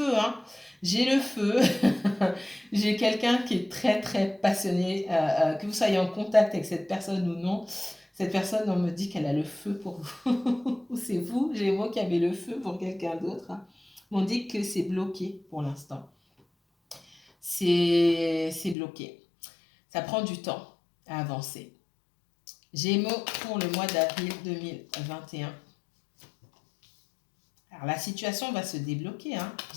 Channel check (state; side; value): drops out; right; at 18.8 s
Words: hein. J'ai le feu. J'ai quelqu'un qui est très, très passionné. Que vous soyez en contact avec cette personne ou non, cette personne, on me dit qu'elle a le feu pour vous. C'est vous, Gémeaux, qui avez le feu pour quelqu'un d'autre. Hein. On dit que c'est bloqué pour l'instant. C'est bloqué. Ça prend du temps à avancer. Gémeaux pour le mois d'avril 2021. Alors, la situation va se débloquer. Hein.